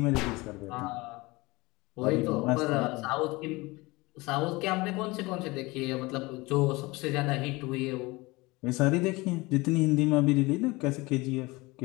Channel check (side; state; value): right; quieter; 22.9 dB